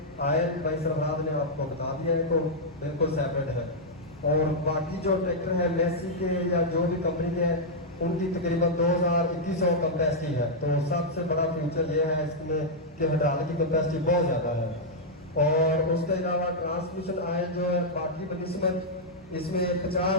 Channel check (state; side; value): normal; both; correlation -0.06